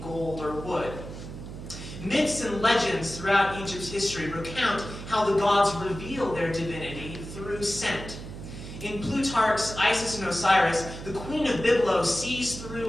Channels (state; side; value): noise; right; hum, 11 dB below the sound